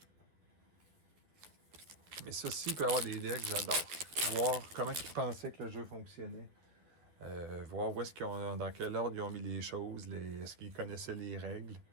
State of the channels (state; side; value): late; left; 12 ms